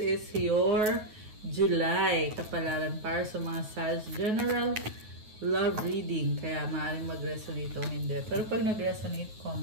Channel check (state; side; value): late; left; 9.3 ms